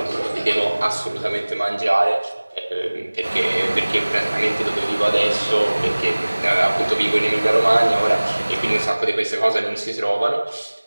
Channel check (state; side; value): inverted; both; correlation -1.00